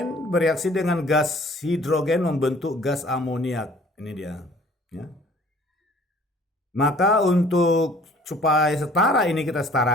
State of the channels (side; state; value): both; normal; correlation 0.53